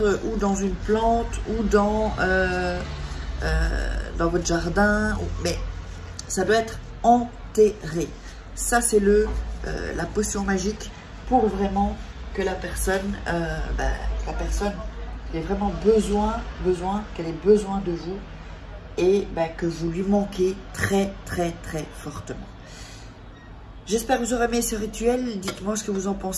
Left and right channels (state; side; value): identical; both; correlation 1.00